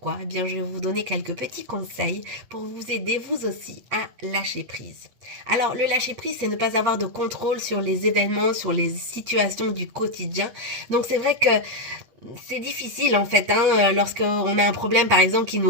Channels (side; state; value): left; late; 8.1 ms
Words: je vais vous donner quelques petits conseils pour vous aider vous aussi à lâcher prise. Alors le lâcher prise, c'est ne pas avoir de contrôle sur les événements, sur les situations du quotidien. Donc c'est vrai que c'est difficile en fait, lorsqu'on a un problème par exemple qui